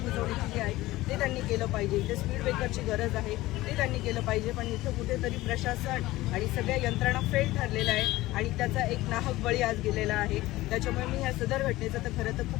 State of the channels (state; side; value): quieter; right; 17.9 dB